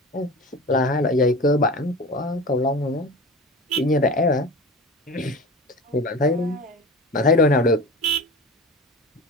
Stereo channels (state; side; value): normal; both; correlation 0.32